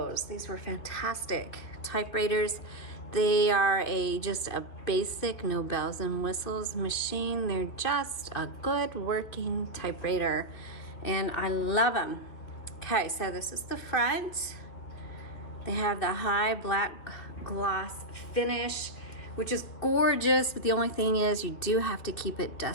These were fantastic typewriters. They are just a basic, no bells and whistles machine. They're just a good working typewriter, and I love them. Okay, so this is the front. They have the high black gloss finish, which is gorgeous, but the only thing is you do have to keep it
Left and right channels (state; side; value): late; right; 2.9 ms